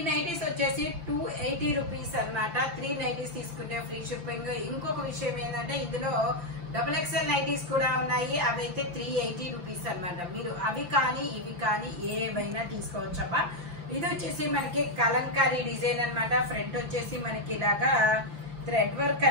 నైటీస్ వచ్చేసి 280 రూపీస్ అన్నమాట. 3 నైటీస్ తీసుకుంటే ఫ్రీ షిప్పింగ్. ఇంకొక విషయం ఏంటంటే ఇందులో XXL నైటీస్ కూడా ఉన్నాయి. అవి అయితే 380 రూపీస్ అన్నమాట. మీరు అవి కానీ ఇవి కానీ ఏమైనా తీసుకోవచ్చమ్మా. ఇది వచ్చేసి మనకి కలంకారీ డిజైన్ అన్నమాట. ఫ్రంట్ వచ్చేసి మనకి ఇలాగా థ్రెడ్ వర్క్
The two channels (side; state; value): left; late; 5.8 ms